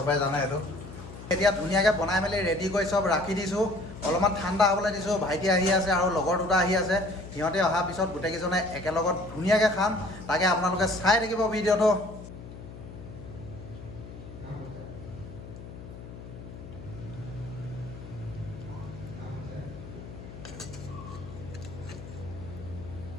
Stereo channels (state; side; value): noise; left; hum, 13 dB below the sound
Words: জানে সেইটো। এতিয়া ধুনীয়াকৈ বনাই মেলি ৰেডি কৰি চব ৰাখি দিছোঁ। অলপমান ঠাণ্ডা হ'বলৈ দিছোঁ। ভাইটি আহি আছে আৰু লগৰ দুটা আহি আছে। সিহঁতে অহাৰ পিছত গোটেইকেইজনে একেলগত ধুনীয়াকৈ খাম। তাকে আপোনালোকে চাই থাকিব ভিডিঅ'টো।